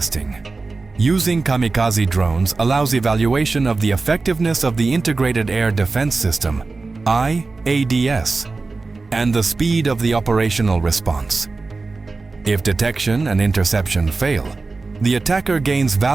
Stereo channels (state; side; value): quieter; left; 3.8 dB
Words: Using kamikaze drones allows evaluation of the effectiveness of the Integrated Air Defense System, IADS, and the speed of the operational response. If detection and interception fail, the attacker gains